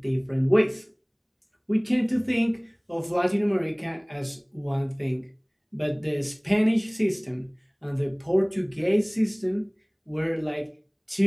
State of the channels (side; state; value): both; identical; correlation 1.00